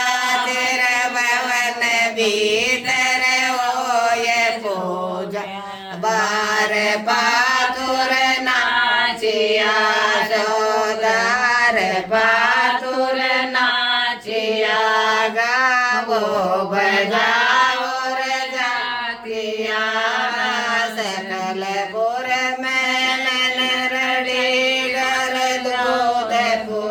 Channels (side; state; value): both; identical; correlation 1.00